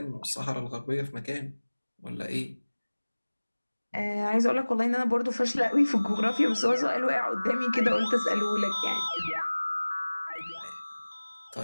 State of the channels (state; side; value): inverted; both; correlation -1.00